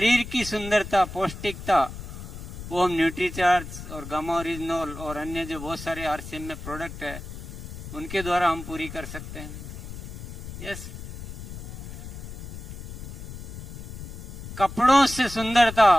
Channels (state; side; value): noise; left; rumble, 10 dB below the sound